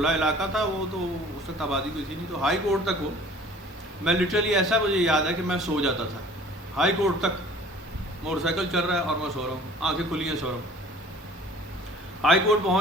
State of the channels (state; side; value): normal; both; correlation 0.48